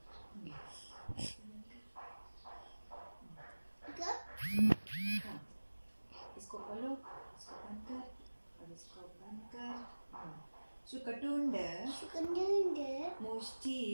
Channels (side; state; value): both; inverted; correlation -1.00